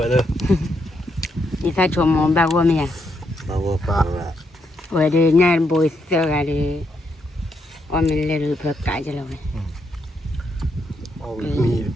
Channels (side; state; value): both; normal; correlation 0.78